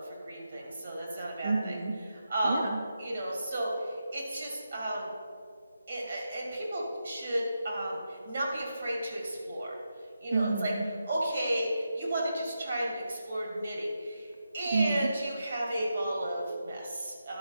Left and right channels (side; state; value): both; inverted; correlation -0.88